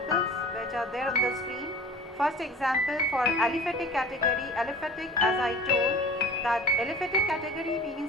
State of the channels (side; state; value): both; normal; correlation 0.42